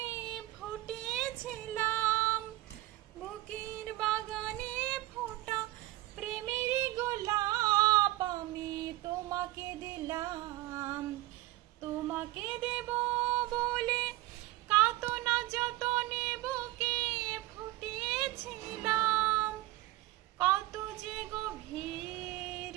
ফুটেছিলাম। বুকের বাগানে ফোটা প্রেমেরই গোলাপ আমি তোমাকে দিলাম। তোমাকে দেব বলে কত না যতনে বুকে ফুটেছিলাম। কত যে গভীর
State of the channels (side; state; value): left; quieter; 17.6 dB